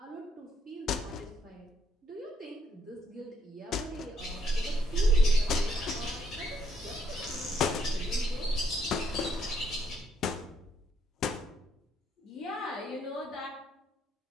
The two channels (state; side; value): normal; both; correlation 0.72